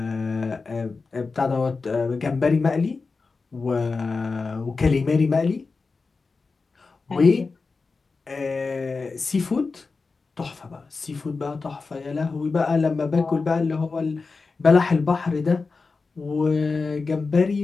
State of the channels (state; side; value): quieter; right; 4.2 dB